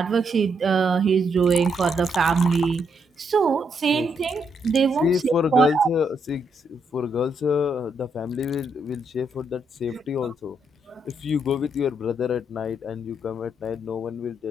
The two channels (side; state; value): both; normal; correlation 0.76